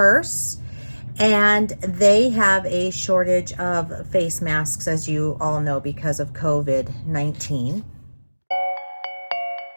and they have a shortage of face masks, as you all know, because of COVID-19.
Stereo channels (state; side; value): inverted; both; correlation -1.00